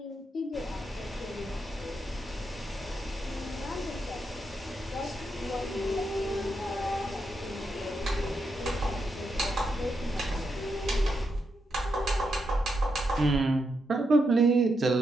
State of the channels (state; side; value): normal; both; correlation 0.83